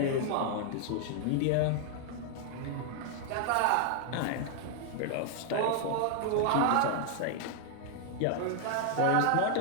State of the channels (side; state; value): both; different; correlation 0.00